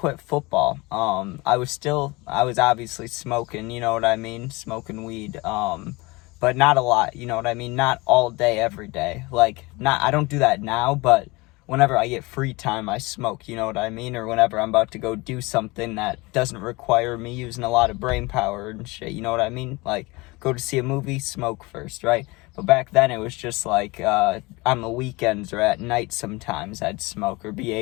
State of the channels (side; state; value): right; quieter; 23.9 dB